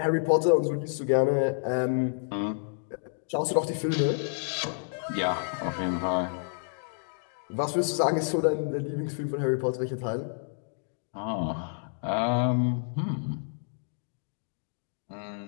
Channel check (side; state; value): right; silent; digital silence